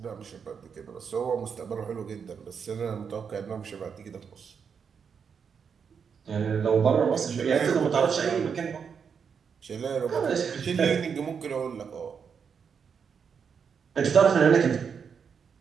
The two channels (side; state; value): left; quieter; 6.6 dB